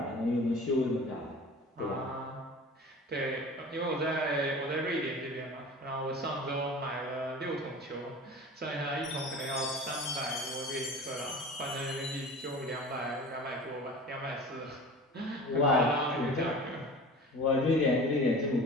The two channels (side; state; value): both; normal; correlation 0.38